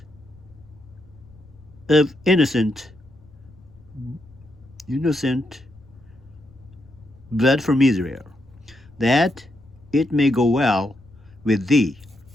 of innocent blood from Israel, that it may go well with thee.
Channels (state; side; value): noise; left; rumble, 25 dB below the sound